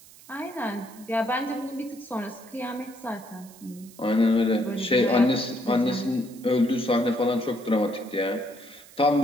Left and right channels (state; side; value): noise; right; hiss, 22 dB below the sound